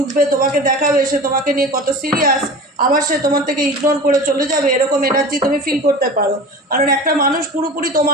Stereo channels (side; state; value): both; normal; correlation 0.35